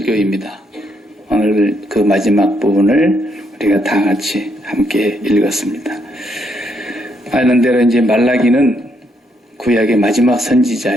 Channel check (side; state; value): both; normal; correlation 0.75